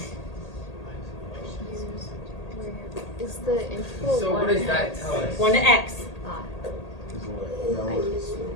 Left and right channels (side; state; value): right; late; 1.8 ms